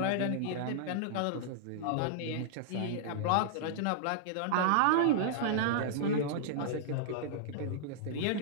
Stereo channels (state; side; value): different; both; correlation -0.02